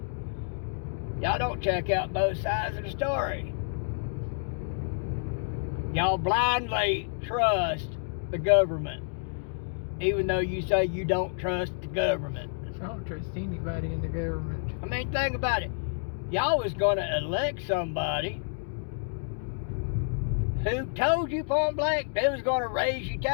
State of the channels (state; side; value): silent; right; digital silence